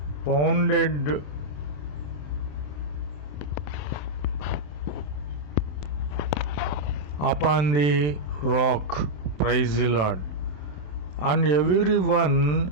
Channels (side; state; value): right; late; 27 ms